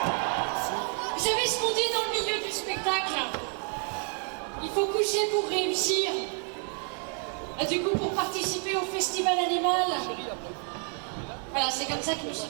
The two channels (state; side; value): quieter; left; 39.6 dB